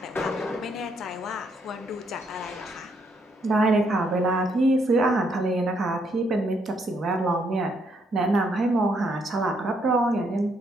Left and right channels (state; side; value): normal; both; correlation 0.73